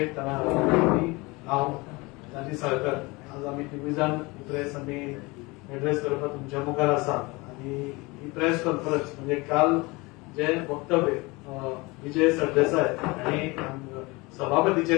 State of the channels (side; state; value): right; quieter; 24.5 dB